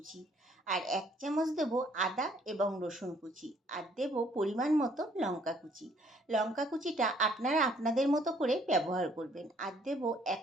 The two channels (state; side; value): normal; both; correlation 0.63